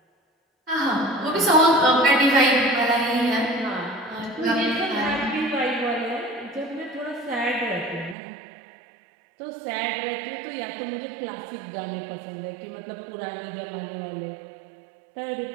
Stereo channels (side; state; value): left; drops out; at 8.2 s